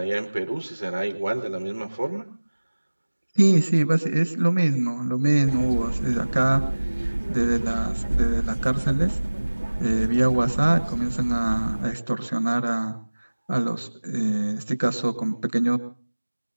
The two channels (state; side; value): inverted; both; correlation -1.00